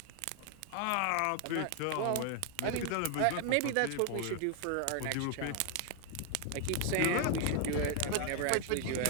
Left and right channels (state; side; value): different; both; correlation 0.01